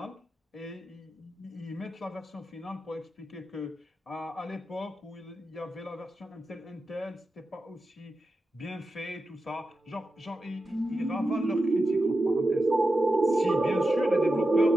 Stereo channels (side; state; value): both; normal; correlation 0.90